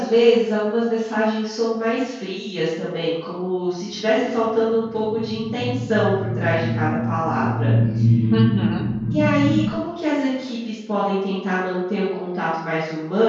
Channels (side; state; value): both; identical; correlation 1.00